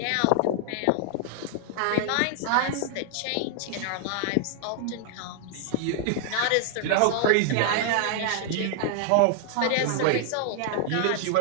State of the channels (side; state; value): both; different; correlation 0.00